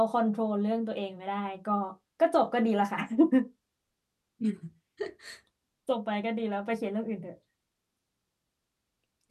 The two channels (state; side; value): identical; both; correlation 1.00